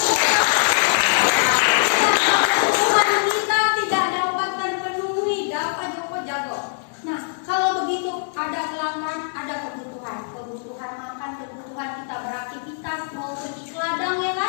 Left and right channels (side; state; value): right; silent; 64 dB below the other